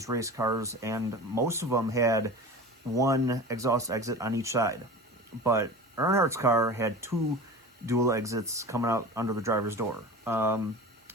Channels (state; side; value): normal; both; correlation 0.34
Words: race cars, and most of them had one exhaust exit on each side. But Earnhardt's car had 2 dual exits coming out under the driver's door.